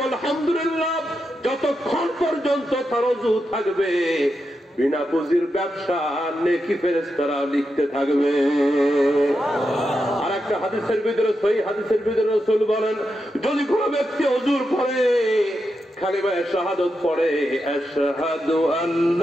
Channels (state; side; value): normal; both; correlation 0.87